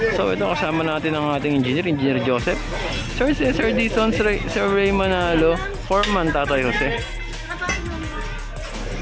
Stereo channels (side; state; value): both; identical; correlation 1.00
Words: So ito kasama natin ang ating Engineer Joseph, Sir Cesar Dizon, Sir Ray Manalo, Foreman Tatay Jose.